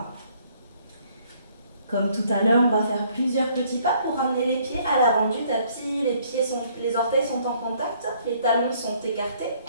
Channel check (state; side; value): inverted; both; correlation -0.63